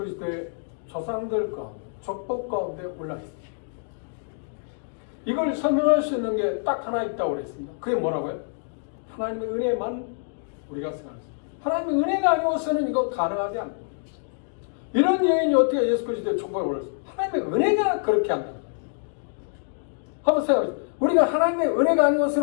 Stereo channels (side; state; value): right; silent; digital silence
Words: 조상들 가운데, 족복 가운데 올라왔습니다. 이걸 설명할 수 있는 게 딱 하나 있다고 그랬습니다. 그게 뭐라고요? 하나님의 은혜만 우리가 생각합니다. 하나님의 은혜가 아니고서는 이거 가능하지 않습니다. 이런 여인이 어떻게 예수 그리스도의 족복에 올랐습니까? 하나님의 은혜가 그렇게 한다. 한번 생각해보세요. 우리가 하나님의 은혜가